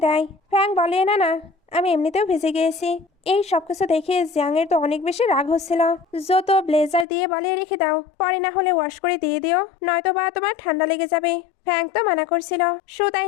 দেয়। ফ্যাং বলে না না আমি এমনিতেও ভিজে গিয়েছি। এই সবকিছু দেখে জিয়াং এর তো অনেক বেশি রাগ হচ্ছিল। জো তো ব্লেজার দিয়ে বলে রেখে দাও, পরে না হলে ওয়াশ করে দিয়ে দিও, নয়তো বা তোমার ঠান্ডা লেগে যাবে। ফ্যাং তো মানা করছিল। শো তাই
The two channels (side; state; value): right; drops out; at 7.1 s